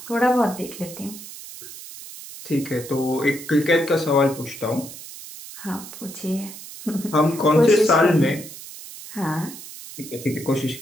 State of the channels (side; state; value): right; noise; hiss, 14 dB below the sound